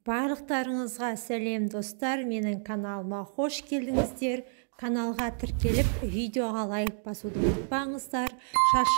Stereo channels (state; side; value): silent; left; digital silence